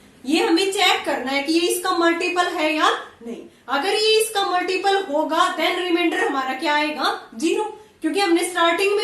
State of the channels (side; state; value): both; identical; correlation 1.00